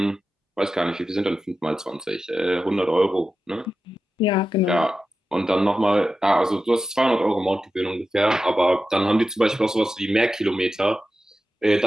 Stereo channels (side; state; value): both; normal; correlation 0.92